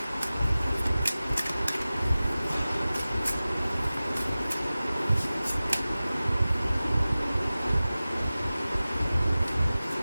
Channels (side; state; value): both; inverted; correlation -0.97